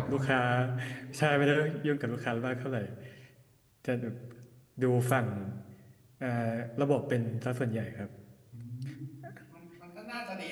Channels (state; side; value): identical; both; correlation 1.00